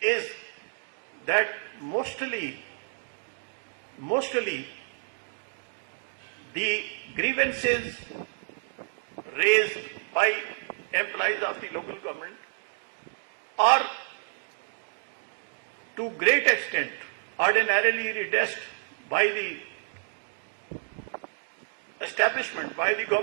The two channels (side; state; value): left; silent; digital silence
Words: is that mostly the grievances raised by employees of the local government are to great extent ordinarily redressed by the establishment, by the